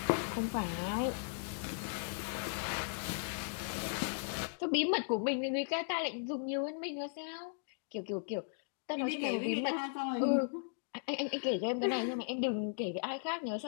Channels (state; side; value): silent; right; digital silence